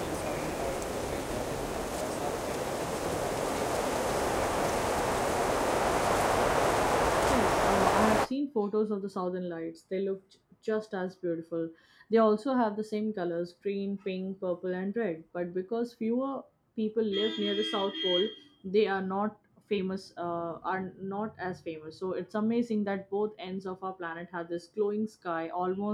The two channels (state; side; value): identical; both; correlation 1.00